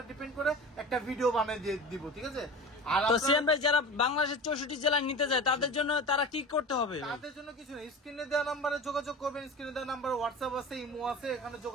ডিপেন্ড করে একটা ভিডিও বানিয়ে দিয়ে দিব, ঠিক আছে। আর তো সিয়াম ভাই, যারা বাংলাদেশের 64 জেলায় নিতে যায় তাদের জন্য তারা কি করতে হবে? তাদের জন্য কিছু নেই, স্ক্রিনে দেওয়া নাম্বারে যোগাযোগ করবেন। স্ক্রিনে দেওয়া নাম্বারে হোয়াটসঅ্যাপ আছে, ইমো আছে, এখানে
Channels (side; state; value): both; normal; correlation 0.33